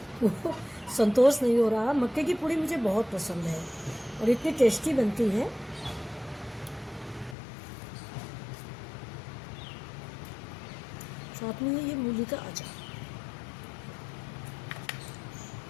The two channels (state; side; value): drops out; right; at 7.4 s